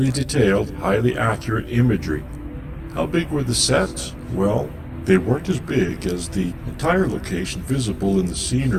detailed, highly accurate imagery. How big were the sets? Well, they weren't as big as the entire location visible in the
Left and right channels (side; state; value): both; identical; correlation 1.00